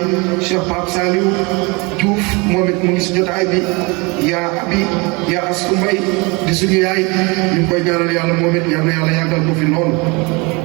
Cheikh Pape Saliou Diouf moom it mu ngi si jotaay bi yaa abi yaa Astou Mbaye di suñu yaay ñu ngi koy ñaanal yàlla moom it yal na yàlla yàggal ko fi noonu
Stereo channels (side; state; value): left; quieter; 27.5 dB